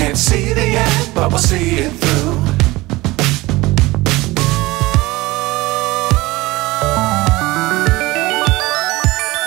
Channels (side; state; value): left; quieter; 20.4 dB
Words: see the end, but we'll see it through.